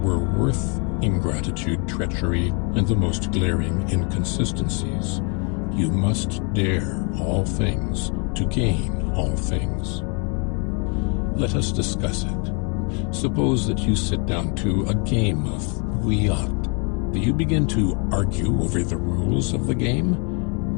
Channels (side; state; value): right; quieter; 35.4 dB